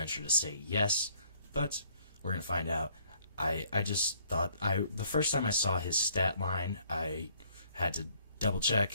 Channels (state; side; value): inverted; both; correlation -0.63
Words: to say yes, but we're going to find out. I just thought, the first time I saw his stat line, I had to double